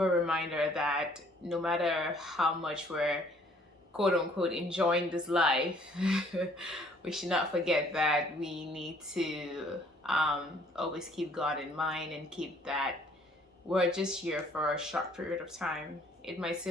reminder that no matter how much we're quote unquote enjoying this life, we should not forget that we need to always keep God in mind and keep that we're just here for a short period of time. It might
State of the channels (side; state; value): both; normal; correlation 0.60